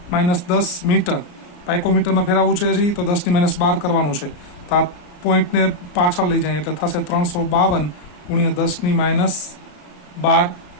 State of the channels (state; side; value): late; right; 33 ms